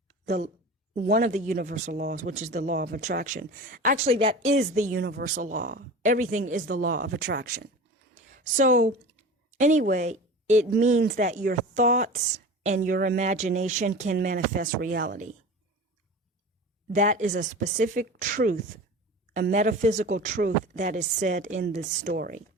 one of the universal laws, which is the law of attraction. Actually, that is the universal law. Everything is the law of attraction. So, anyway, it means that your thoughts and your imagination can manifest reality. That is a specific truth, a metaphysical truth that is said in this story.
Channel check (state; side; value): normal; both; correlation 0.34